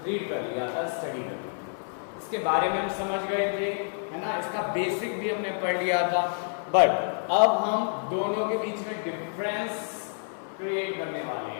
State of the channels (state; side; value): silent; right; digital silence